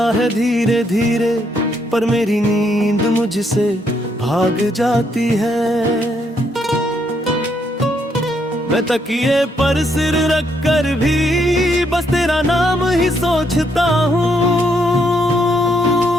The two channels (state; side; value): normal; both; correlation 0.74